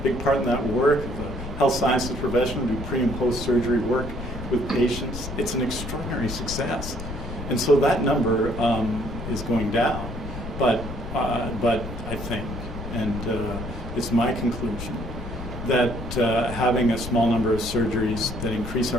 big part in that work, of the health sciences profession who do pre and post surgery work with patients. It's an extraordinary success. And so that number is going down. But I think, and it's my conclusion, that having a small number of surgeries that increase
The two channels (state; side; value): noise; left; rumble, 8 dB below the sound